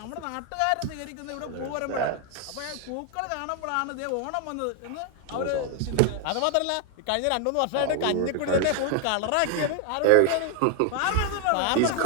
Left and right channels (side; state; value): both; different; correlation 0.00